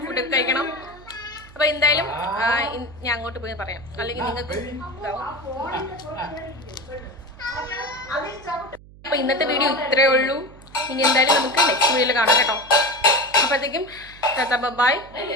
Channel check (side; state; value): right; noise; hum, 21 dB below the sound